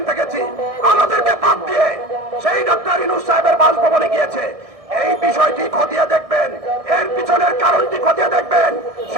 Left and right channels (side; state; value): left; late; 1.6 ms